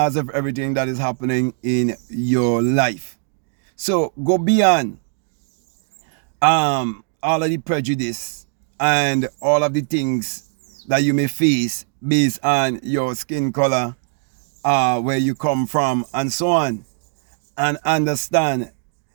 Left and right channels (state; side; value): silent; left; 65 dB below the other